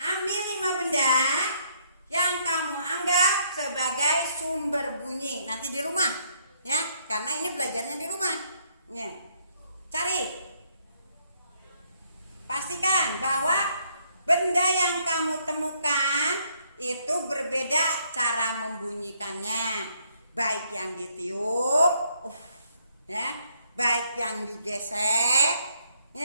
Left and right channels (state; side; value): inverted; both; correlation -0.69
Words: nanti di rumah ya, karena ini belajarnya di rumah ya. Cari, pastikan bahwa benda yang kamu temukan itu berbeda cara membunyikannya, baik yang ditiup ya, baik yang digesek